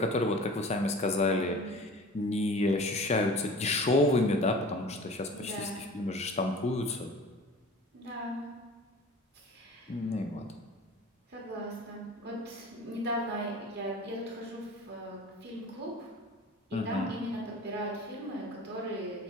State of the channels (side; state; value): both; normal; correlation 0.41